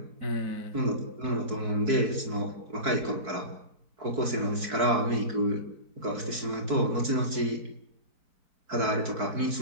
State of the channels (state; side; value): late; left; 4.5 ms